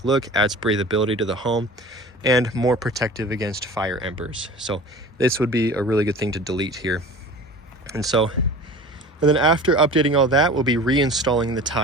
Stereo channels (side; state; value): both; normal; correlation 0.39